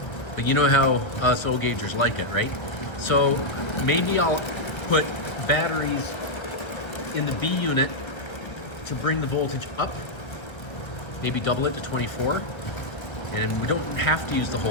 But you know how us O-gaugers like it, right? So maybe I'll put batteries in the B unit to bring the voltage up. Maybe double it to 24. And we don't have to use the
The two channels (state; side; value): late; right; 1.3 ms